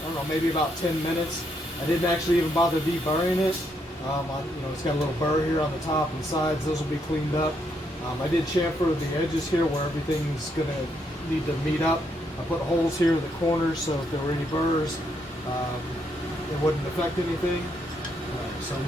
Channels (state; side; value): normal; both; correlation 0.76